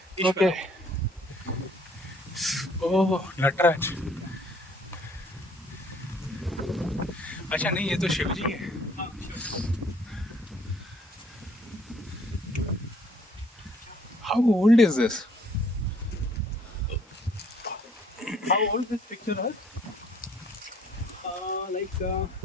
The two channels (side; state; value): both; normal; correlation 0.61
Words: Ishvara. Okay. Oh, Nataraj. अच्छा नहीं, ये तो शिव जी है. हाँ, sure. How old is this? How old this picture is? Like